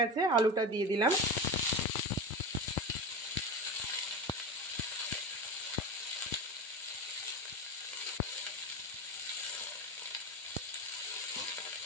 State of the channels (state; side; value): normal; both; correlation 0.24